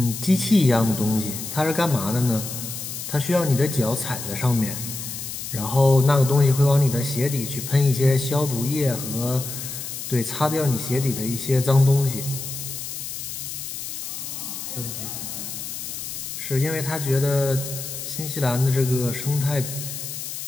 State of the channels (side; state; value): left; noise; hiss, 7 dB below the sound